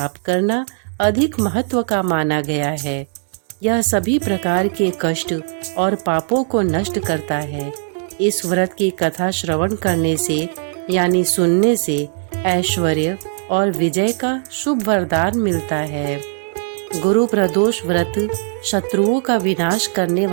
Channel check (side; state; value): left; silent; 65 dB below the other